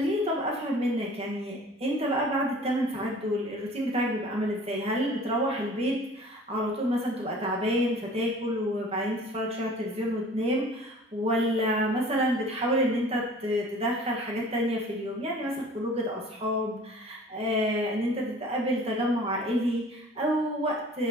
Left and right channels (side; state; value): both; normal; correlation 0.47